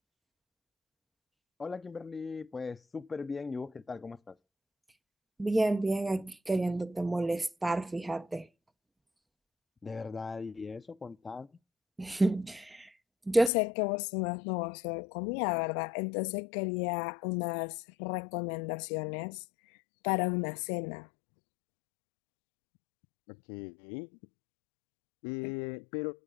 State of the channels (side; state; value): right; drops out; at 13.5 s